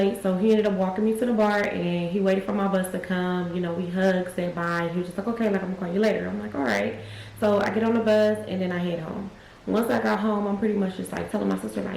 so he ended up walking me to the bar, and he waited for my bus to come. You know, we hugged, said bye, and he was just like, okay, like I'm gonna call you later. I'm like, all right. So I get on the bus and then I head home. Once I got home, I'm pretty much just like telling my sister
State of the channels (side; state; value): both; identical; correlation 1.00